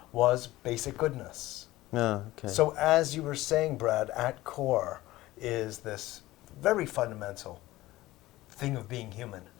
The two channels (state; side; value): quieter; right; 17.5 dB